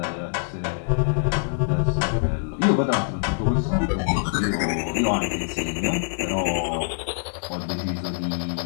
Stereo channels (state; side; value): silent; right; digital silence